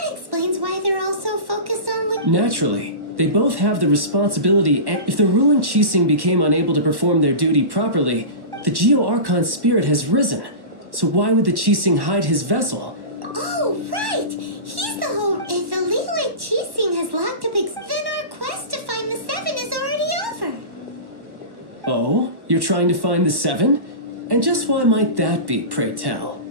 explains why they're all so focused on Naturally, They both have the responsibility, and if the ruling Qixing became unable to perform their duty properly, the Geo-Archon spirit has risen. So why would the Qixing hide his vessel? Oh, right! He's the whole... If the Liyue Qixing has locked up... Then our quest to find the Seven is already over. Oh? You're trying to find the Seven? And just why might that be, pray tell?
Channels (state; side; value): late; left; 1.1 ms